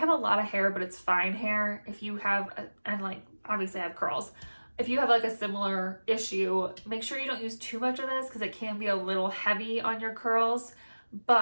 a lot of hair, but it's fine hair. If you have, and like, obviously I have curls. If you have like a similar issue, make sure you don't use too much of this because it can be a little heavy on your curls,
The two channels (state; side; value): inverted; both; correlation -1.00